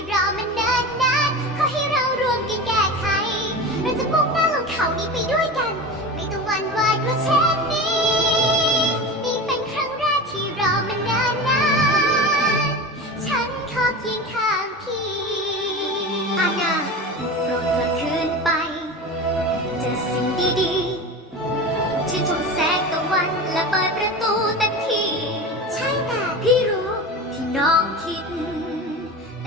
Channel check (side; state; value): both; normal; correlation 0.29